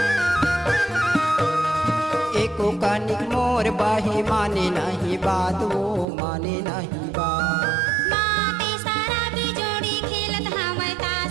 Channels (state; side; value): drops out; left; at 6.1 s